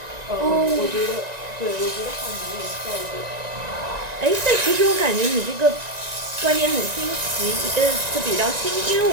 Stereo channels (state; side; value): late; left; 1.9 ms